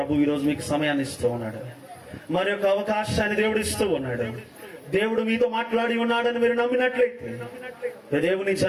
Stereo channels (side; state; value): both; identical; correlation 1.00